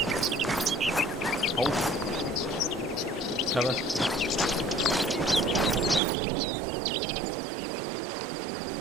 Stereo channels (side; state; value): left; drops out; at 6.0 s